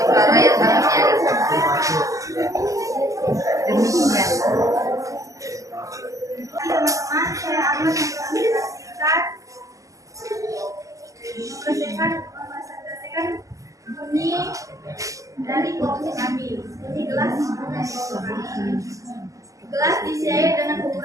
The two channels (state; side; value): late; left; 0.16 ms